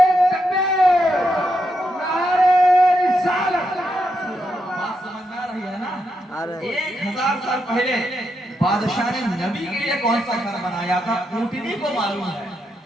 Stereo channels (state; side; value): normal; both; correlation 0.82